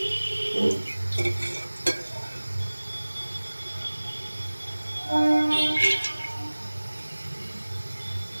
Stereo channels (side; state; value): both; inverted; correlation -1.00